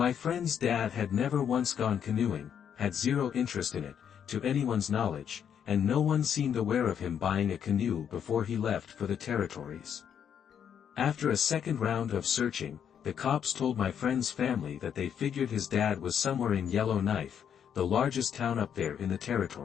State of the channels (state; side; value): quieter; right; 8.4 dB